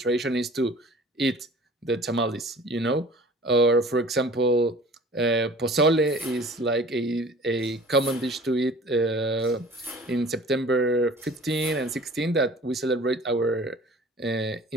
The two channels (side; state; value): both; normal; correlation 0.46